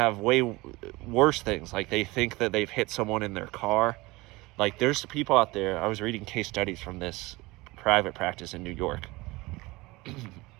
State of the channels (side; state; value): left; quieter; 22.0 dB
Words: way worse things, like they think that they've hit someone in their car. Like, there's people out there, I was reading case studies from this private practice in New York.